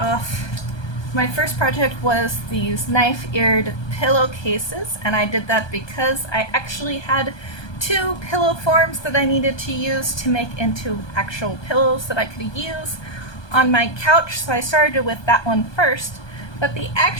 my first project was these knife-eared pillowcases, and I did that because I actually had two pillow forms that I needed to use to make into actual pillows that I could use on my couch, so I started with that one first. But the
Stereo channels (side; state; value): right; late; 1.2 ms